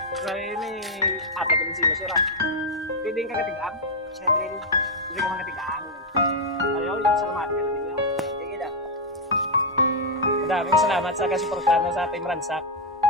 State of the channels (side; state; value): both; normal; correlation -0.01